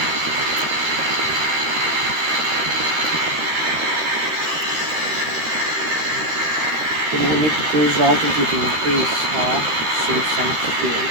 we need cruise altitude increase, save some fuel,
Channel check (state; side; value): late; left; 13 ms